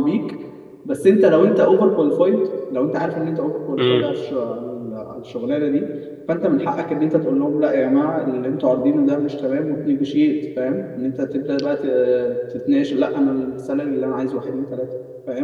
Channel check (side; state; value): both; identical; correlation 1.00